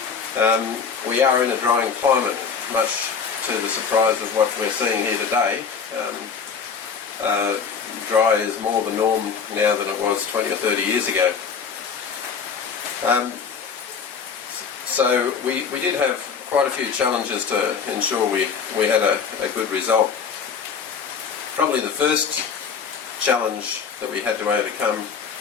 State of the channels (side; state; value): right; quieter; 6.1 dB